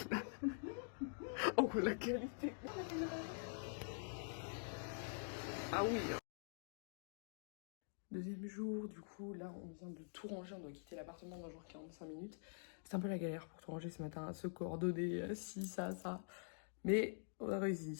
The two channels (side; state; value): right; silent; digital silence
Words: Oh la qualité. Ah oui. Deuxième jour, du coup, là on vient de tout ranger, on doit quitter l'appartement dans genre 45 minutes. C'est un peu la galère pour tout ranger ce matin, se coordonner, ci, ça. Mais on a